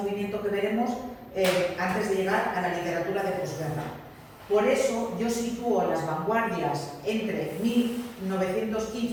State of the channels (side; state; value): both; identical; correlation 1.00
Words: que veremos antes de llegar a la literatura de posguerra. Por eso yo sitúo las vanguardias entre 1915